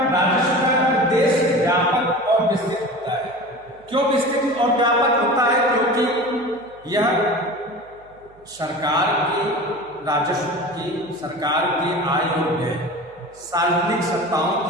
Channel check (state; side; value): noise; right; hum, 28 dB below the sound